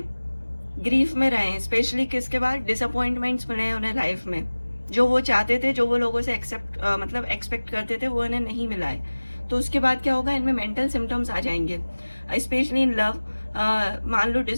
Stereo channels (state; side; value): inverted; both; correlation -1.00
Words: ग्रीफ में रहे हैं, स्पेशली किसके बाद, डिसअपॉइंटमेंट्स मिले हैं उन्हें लाइफ में, जो वो चाहते थे, जो वो लोगों से मतलब एक्सपेक्ट करते थे, वो इन्हें नहीं मिला है, तो उसके बाद क्या होगा, इनमें मेंटल सिम्टम्स आ जाएंगे। Specially in love. मान लो